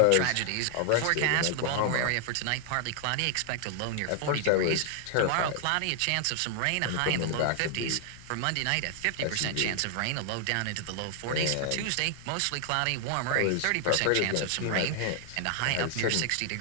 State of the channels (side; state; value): both; different; correlation 0.00